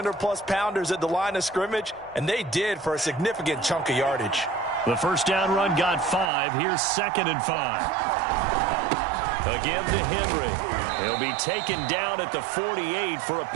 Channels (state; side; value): drops out; left; at 6.3 s